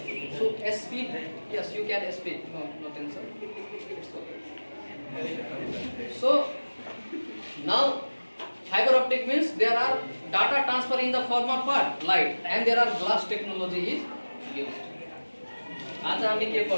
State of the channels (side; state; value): both; inverted; correlation -1.00